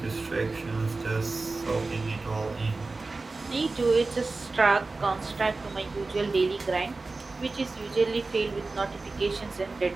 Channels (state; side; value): quieter; left; 3.6 dB